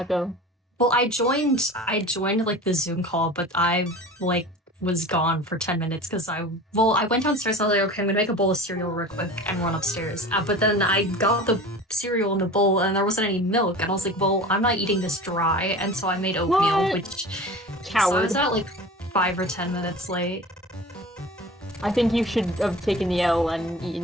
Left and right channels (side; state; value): both; normal; correlation 0.37